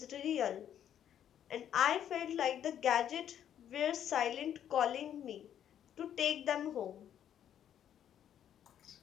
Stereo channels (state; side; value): quieter; right; 9.9 dB